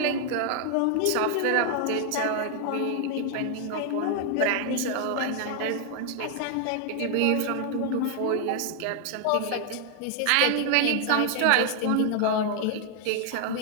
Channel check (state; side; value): different; both; correlation 0.00